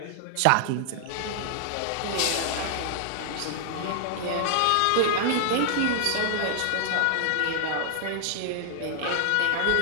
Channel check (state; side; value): different; both; correlation -0.01